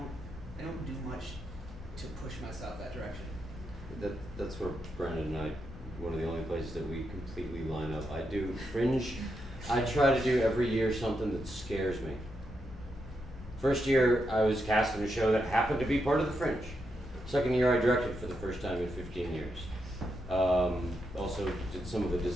don't do much to push myself that direction. That's where Brandon and I, one of the only places that we completely line up. I do Fringe. I try to do every year something that scares me. First year, I was cast in a show that happened to be part of the Fringe. Second year, I directed for the first time in 15 years. Also did some of the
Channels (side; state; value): both; normal; correlation 0.83